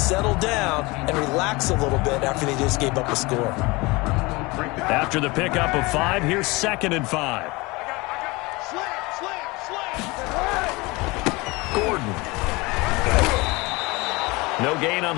down, and relax a little bit after they just gave up a score. After the pickup of 5, here's 2nd and 5. Gordon. No gain on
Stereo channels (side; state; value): right; quieter; 23.9 dB